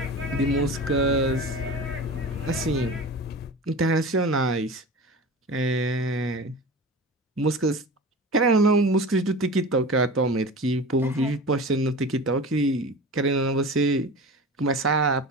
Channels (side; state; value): both; normal; correlation 0.33